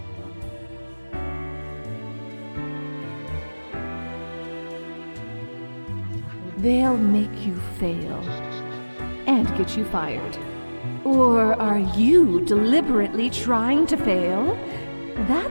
They'll make you fail and get you fired. Or are you deliberately trying to fail?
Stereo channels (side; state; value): both; inverted; correlation -1.00